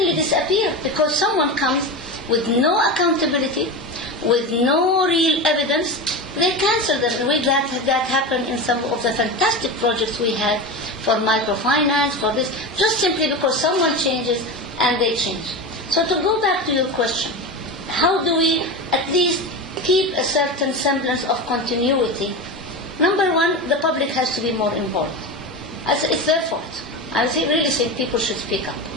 disappear because someone comes with no accountability, with no real evidence. They cancel them. That happened in some of the fantastic projects we had for microfinance, for this, just simply because someone changes and they change. So to go back to your question, how do we at least keep a certain semblance of continuity? Number one, the public has to be more involved. It's their fault. I really think people should speak up.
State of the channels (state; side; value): normal; both; correlation 0.23